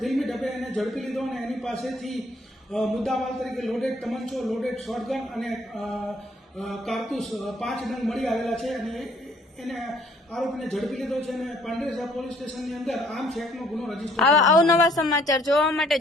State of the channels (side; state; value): both; normal; correlation 0.62